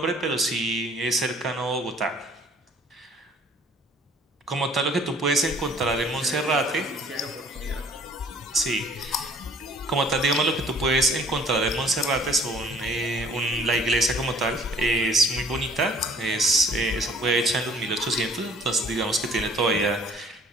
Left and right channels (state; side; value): normal; both; correlation 0.55